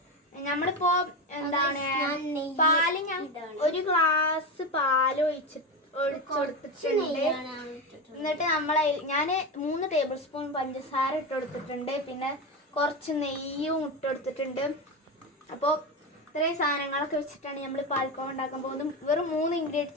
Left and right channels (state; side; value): normal; both; correlation 0.18